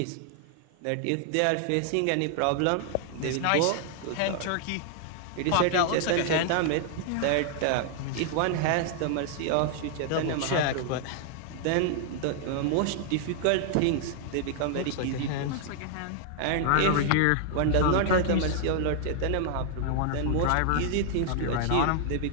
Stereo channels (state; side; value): different; both; correlation -0.01